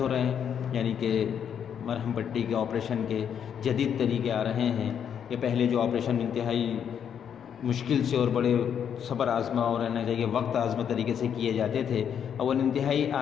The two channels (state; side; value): quieter; right; 8.3 dB